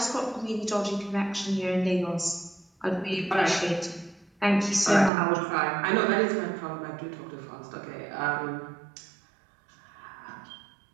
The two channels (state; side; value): drops out; left; at 5.1 s